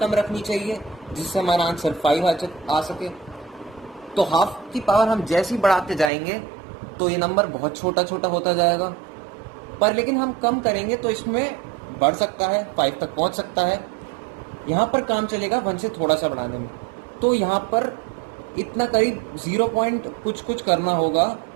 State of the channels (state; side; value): drops out; left; at 6.1 s